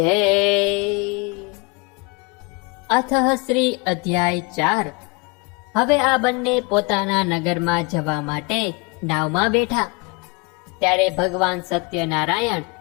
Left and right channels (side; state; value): right; quieter; 28.3 dB